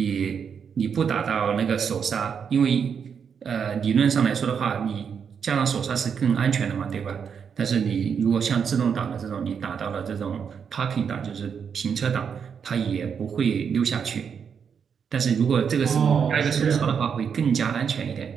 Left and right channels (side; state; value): left; quieter; 6.9 dB